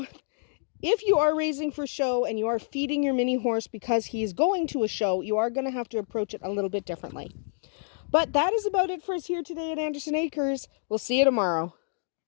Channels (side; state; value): right; silent; digital silence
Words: if you are raising for show and you are feeding your mini horse because he's going to a show, you are going to have to approach it a little bit differently. But that is about it for us here today at Andersen Acres. We'll see you tomorrow.